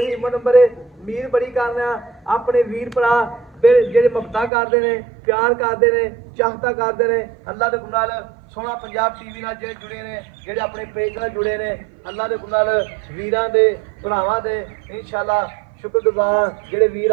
ईमेल नंबर है मीर बड़ी करना अपने वीर भरा ਜਿਹੜੇ ਮੁਹੱਬਤਾਂ ਕਰਦੇ ਨੇ ਪਿਆਰ ਕਰਦੇ ਨੇ ਚਾਹਤਾ ਕਰਦੇ ਨੇ ਅੱਲਾ ਦੇ ਗੁਨਾਹ ਨਾਲ ਸੋਹਣਾ ਪੰਜਾਬ ਟੀਵੀ ਨਾਲ ਜਿਹੜੇ ਜੁੜੇ ਨੇ ਜਿਹੜੇ ਆਪਣੇ ਪੇਜ ਨਾਲ ਜੁੜੇ ਨੇ ਅੱਲਾ ਦੇ ਗੁਨਾਹ ਨਾਲ ਵੀਰਾਂ ਦੇ ਭਰਾਵਾਂ ਦੇ ਇਨਸ਼ਾਅੱਲਾ ਸ਼ੁਕਰਗੁਜ਼ਾਰ ਜਿਹੜੇ ਵੀਰ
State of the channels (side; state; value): left; drops out; at 4.5 s